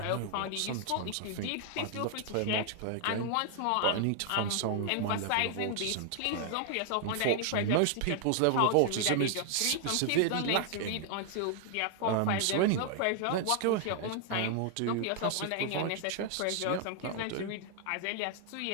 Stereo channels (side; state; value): both; different; correlation 0.00